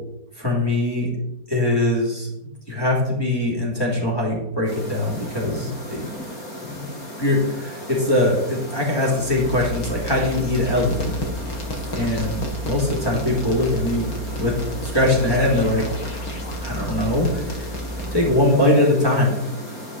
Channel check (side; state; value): right; late; 4.3 ms